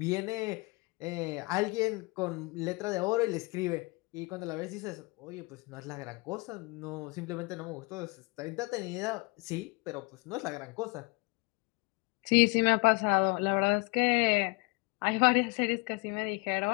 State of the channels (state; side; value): quieter; right; 28.0 dB